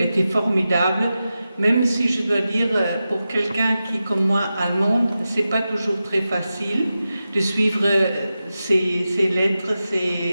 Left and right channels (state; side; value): inverted; both; correlation -0.92